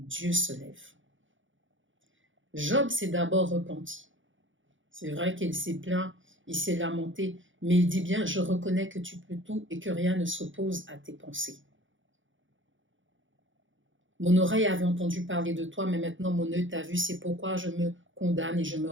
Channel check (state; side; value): late; left; 0.56 ms